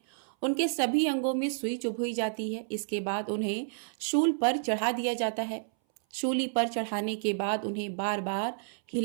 उनके सभी अंगों में सुई चुभोई जाती है। इसके बाद उन्हें शूल पर चढ़ा दिया जाता है। शूली पर चढ़ाने के बाद उन्हें बार बार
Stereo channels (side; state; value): left; silent; 58 dB below the other